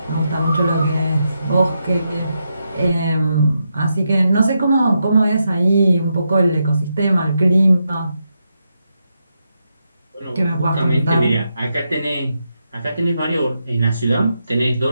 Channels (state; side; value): inverted; both; correlation -0.84